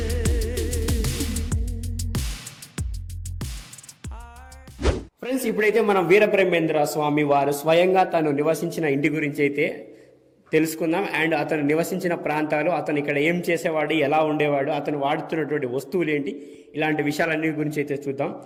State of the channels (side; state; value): both; identical; correlation 1.00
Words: ఫ్రెండ్స్, ఇప్పుడైతే మనం వీరబ్రహ్మేంద్ర స్వామి వారు స్వయంగా తను నివసించిన ఇంటి గురించి అయితే తెలుసుకుందాం. అండ్ అతను నివసించిన ప్రాంతాలు, అతను ఇక్కడ ఏం చేసేవాడు, ఎలా ఉండేవాడు, అతను వాడుతున్నటువంటి వస్తువులు ఏంటి, ఇలాంటి విషయాలన్నీ గురించి అయితే చూద్దాం.